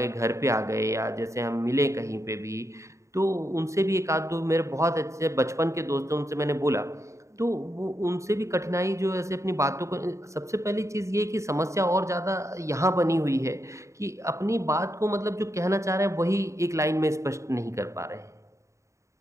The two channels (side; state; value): left; late; 0.14 ms